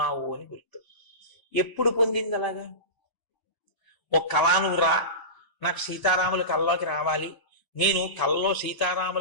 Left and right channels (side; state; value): right; late; 1.0 ms